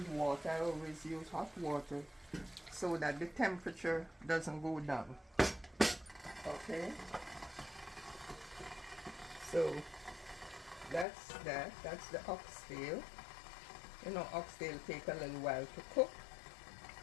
water. I always use hot water so that the temperature doesn't go down. Okay, so that's the oxtail. You know, oxtail take a little while to cook,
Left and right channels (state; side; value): drops out; right; at 11.1 s